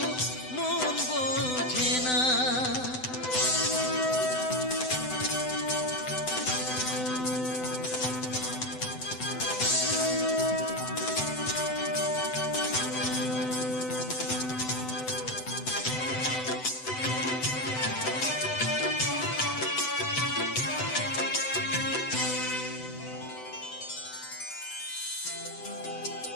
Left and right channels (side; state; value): right; late; 7.9 ms